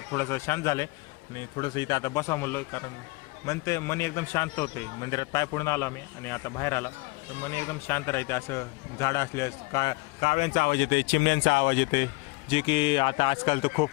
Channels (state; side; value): quieter; right; 25.2 dB